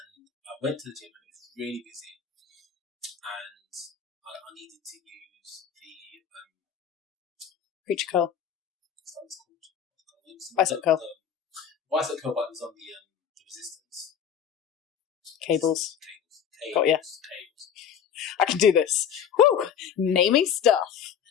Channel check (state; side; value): quieter; right; 8.1 dB